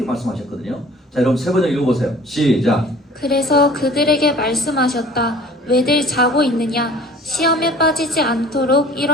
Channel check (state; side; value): normal; both; correlation 0.47